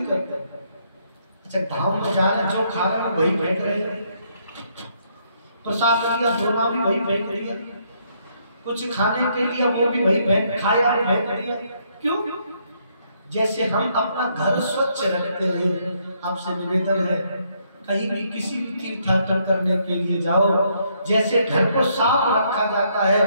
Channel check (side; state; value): both; inverted; correlation -0.72